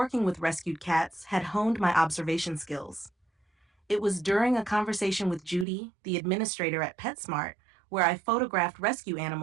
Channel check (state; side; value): drops out; left; at 5.7 s